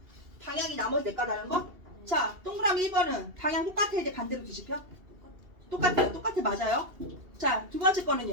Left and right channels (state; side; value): late; left; 2.7 ms